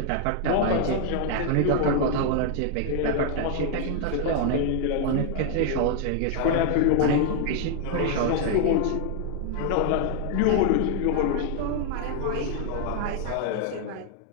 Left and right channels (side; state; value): both; different; correlation 0.00